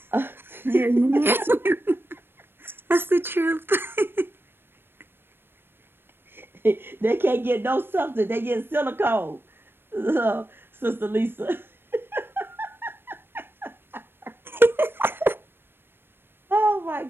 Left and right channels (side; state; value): left; late; 0.10 ms